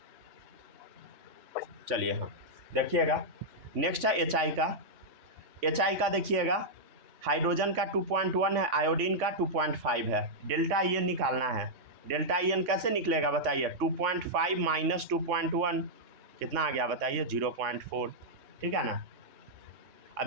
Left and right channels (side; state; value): left; late; 3.5 ms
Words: चलिए। हाँ देखिएगा, नेक्स्ट है HI का। HI का देखिएगा, हाइड्रोजन का 2.1 है, आयोडीन का 2.5 है। डेल्टा EN निकालना है। डेल्टा EN कैसे निकलेगा बताइए, 2.5 - 2.1 कितना आ गया बताइए, 0.4। ठीक है ना,